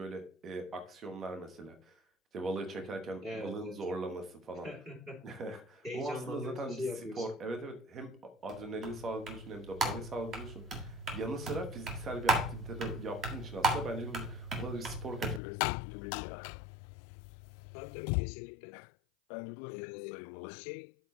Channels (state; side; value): drops out; right; at 15.4 s